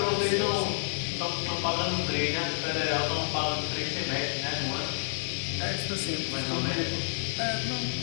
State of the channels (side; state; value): right; silent; 58 dB below the other